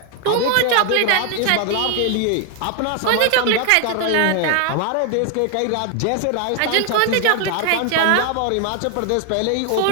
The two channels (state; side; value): different; both; correlation 0.00